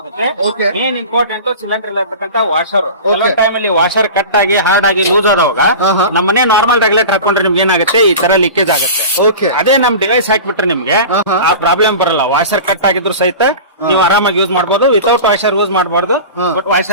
ಮೇನ್ ಇಂಪಾರ್ಟೆಂಟ್ ಸಿಲಿಂಡರ್ ಇರತಕ್ಕಂತ ವಾಷರ್. ಕೆಲವೊಂದು ಟೈಮ್ ಅಲ್ಲಿ ವಾಷರ್ ಕಟ್ ಆಗಿ ಹಾರ್ಡ್ ಆಗಿ ಲೂಸ್ ಆದವಾಗ ನಮ್ಮನೆ ನಾರ್ಮಲ್ ರೆಗ್ಯುಲೇಟರ್ ಹಾಕೊಂಡ್ರೆ ನಿಮ್ಗೆ ಏನಾಗುತ್ತೆ, ಈ ತರ ಲೀಕೇಜ್ ಆಗುತ್ತೆ. ಅದೇ ನಮ್ ಡಿವೈಸ್ ಹಾಕ್ಬಿಟ್ರೆ ನಿಮ್ಗೆ ಆ ಪ್ರಾಬ್ಲಮ್ ಬರಲ್ಲ. ವಾಷರ್ ಕಟ್ ಆಗಿದ್ರು ಸಹಿತ ನೀವು ಆರಾಮಾಗಿ ಯೂಸ್ ಮಾಡಬಹುದು. ವಿತೌಟ್ ವಾಷರ್ ಯೂಸ್ ಮಾಡಬಾರ್ದು, ಬಟ್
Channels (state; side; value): inverted; both; correlation -0.34